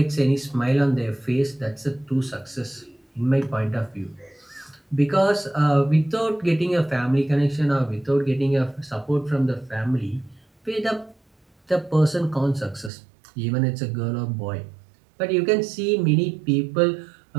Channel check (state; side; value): drops out; left; at 12.9 s